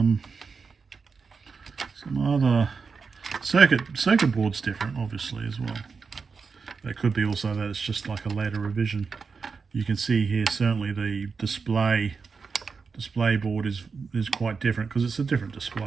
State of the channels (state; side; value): quieter; left; 5.1 dB